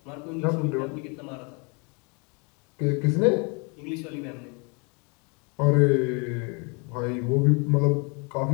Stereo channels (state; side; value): quieter; right; 33.4 dB